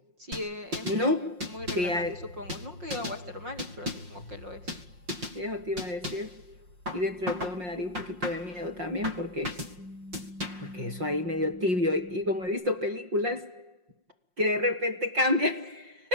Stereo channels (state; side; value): late; left; 5.6 ms